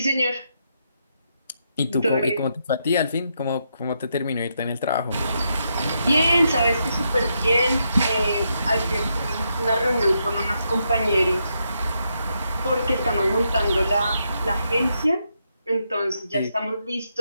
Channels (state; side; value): inverted; both; correlation -0.80